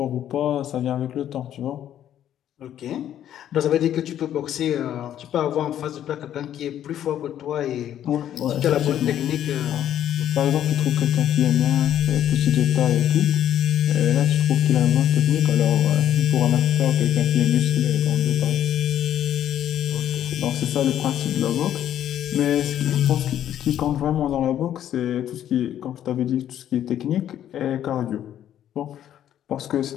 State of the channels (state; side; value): quieter; right; 10.9 dB